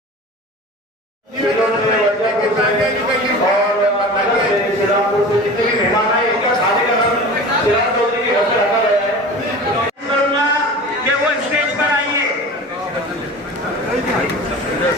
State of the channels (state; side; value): normal; both; correlation 0.36